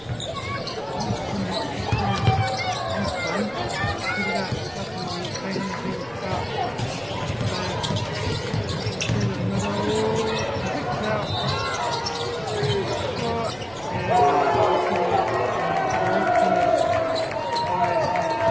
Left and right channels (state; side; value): noise; right; rumble, 24 dB below the sound